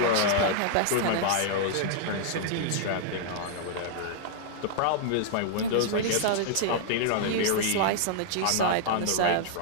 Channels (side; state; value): both; different; correlation -0.01